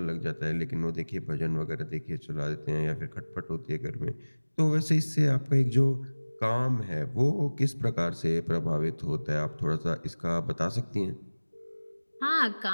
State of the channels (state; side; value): inverted; both; correlation -1.00